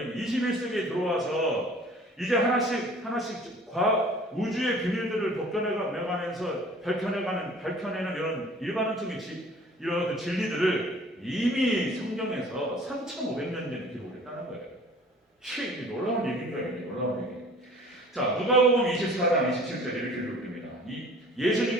21세기에 들어와서 이제 하나씩 우주의 비밀들을 밝혀내는 이런 일반론적인 이런 진리들을 이미 성경에서 3,500년 전에 기록을 했다는 거예요. 이게 놀라운 얘기인 거예요. 놀라운 얘기. 자, 누가복음 24장 27절에 이렇게 기록됩니다.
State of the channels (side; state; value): both; normal; correlation 0.49